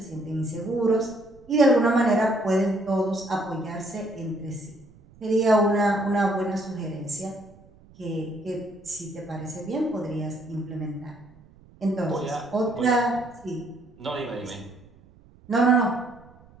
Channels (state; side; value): noise; right; rumble, 26 dB below the sound